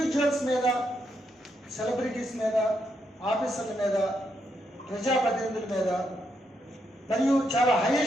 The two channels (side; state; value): both; normal; correlation 0.79